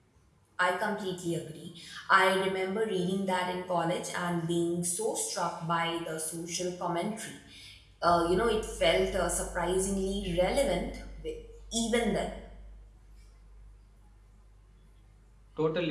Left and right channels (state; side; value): identical; both; correlation 1.00